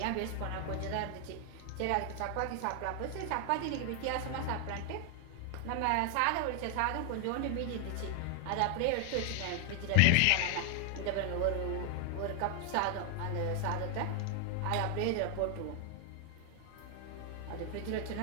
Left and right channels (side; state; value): both; different; correlation 0.00